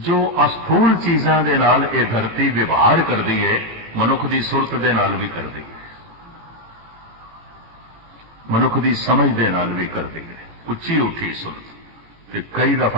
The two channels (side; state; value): left; late; 18 ms